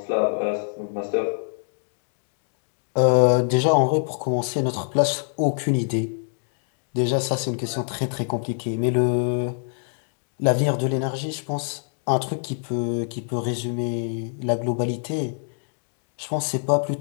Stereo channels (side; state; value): right; silent; digital silence